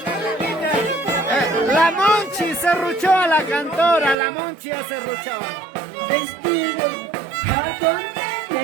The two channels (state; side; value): drops out; left; at 4.2 s